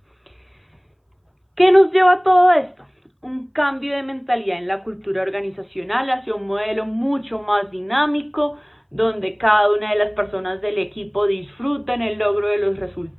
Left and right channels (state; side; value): identical; both; correlation 1.00